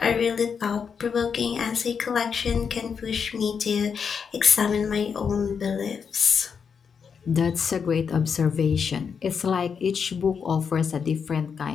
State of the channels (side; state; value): right; quieter; 6.4 dB